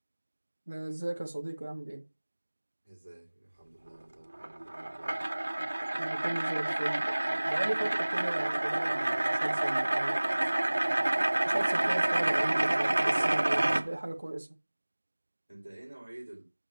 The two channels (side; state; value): both; inverted; correlation -1.00